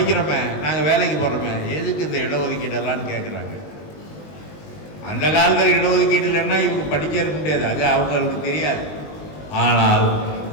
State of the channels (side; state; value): right; late; 20 ms